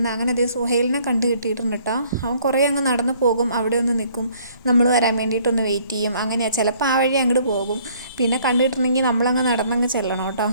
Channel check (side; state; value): both; inverted; correlation -0.60